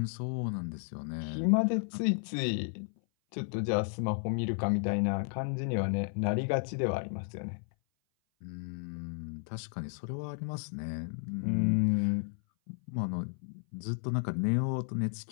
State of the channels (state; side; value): silent; right; 56 dB below the other